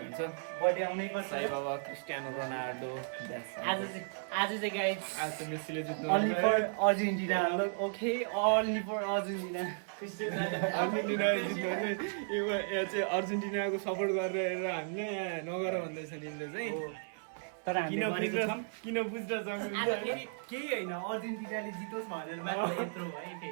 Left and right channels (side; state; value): left; silent; digital silence